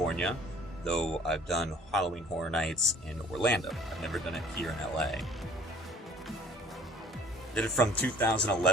though I've done Halloween Horror Nights in Orlando. I've never done it here in LA. Did it from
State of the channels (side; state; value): both; normal; correlation 0.51